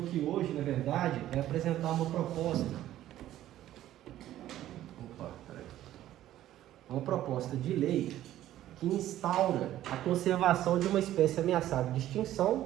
hoje, na verdade, é apresentar uma proposta. Uma proposta de lei que instaura a conservação de uma espécie ameaçada de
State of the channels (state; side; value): quieter; left; 13.2 dB